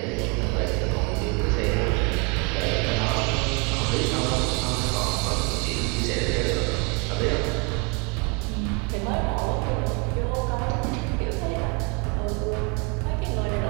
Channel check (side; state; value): left; quieter; 31.0 dB